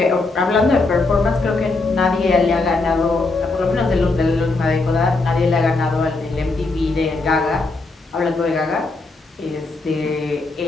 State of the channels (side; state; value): right; quieter; 3.5 dB